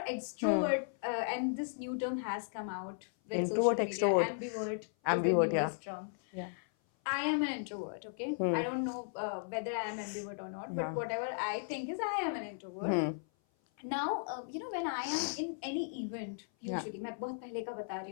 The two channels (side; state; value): right; silent; 54 dB below the other